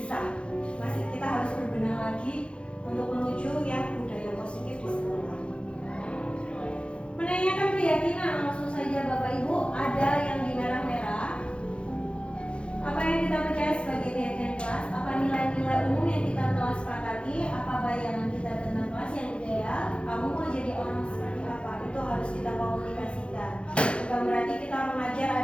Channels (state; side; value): late; right; 0.058 ms